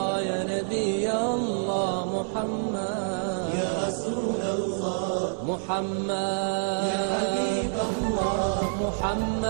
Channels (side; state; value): left; silent; digital silence